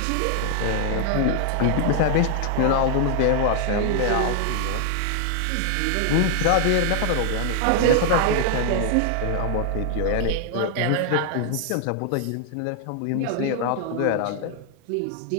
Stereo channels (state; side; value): different; both; correlation 0.00